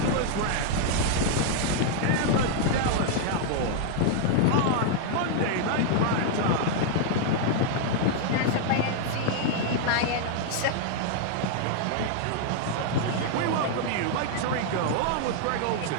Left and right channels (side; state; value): both; different; correlation 0.00